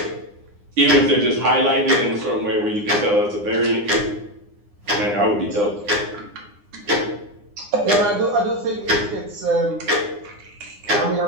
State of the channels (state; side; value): late; left; 9.7 ms